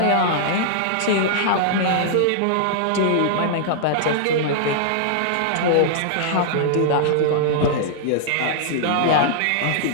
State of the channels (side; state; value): both; different; correlation -0.01